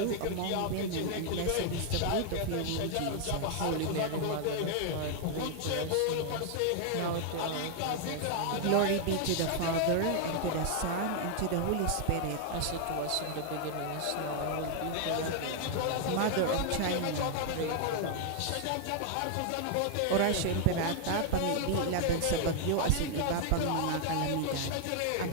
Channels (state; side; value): different; both; correlation 0.00